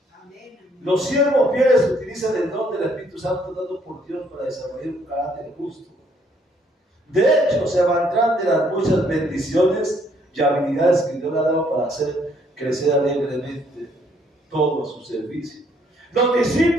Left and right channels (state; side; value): normal; both; correlation 0.67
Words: Los siervos fieles utilizan el don del Espíritu Santo dado por Dios para desarrollar un carácter justo. De hecho, se valdrán de las muchas bendiciones y habilidades que Dios le ha dado para hacer crecer alegremente todo a su servicio. Los